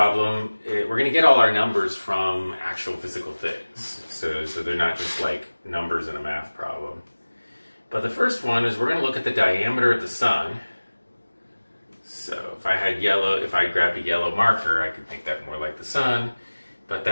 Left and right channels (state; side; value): inverted; both; correlation -1.00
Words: we're going to get all our numbers from actual physical things. So they're not just like numbers in a math problem. But the first one is we're going to look at the diameter of the sun. So if I grabbed a yellow marker, I could make that more like the sun. But